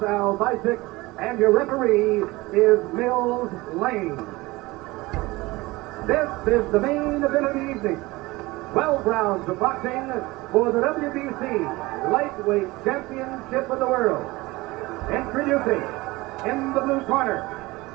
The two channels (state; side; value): quieter; left; 21.1 dB